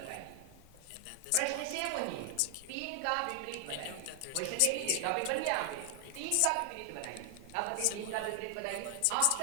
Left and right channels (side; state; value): both; different; correlation 0.00